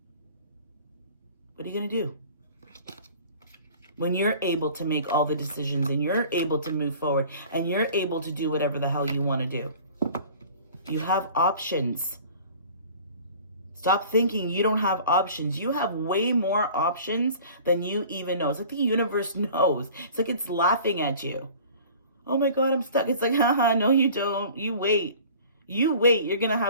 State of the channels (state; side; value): inverted; both; correlation -0.46